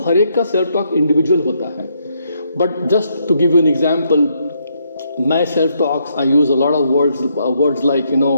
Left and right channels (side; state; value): both; inverted; correlation -0.75